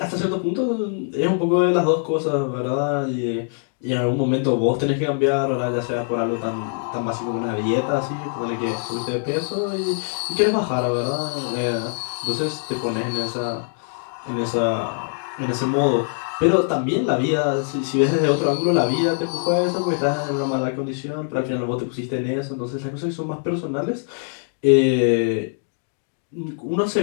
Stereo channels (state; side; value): silent; right; 62 dB below the other